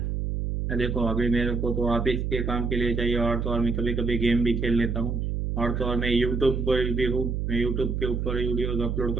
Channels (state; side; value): noise; right; hum, 1 dB below the sound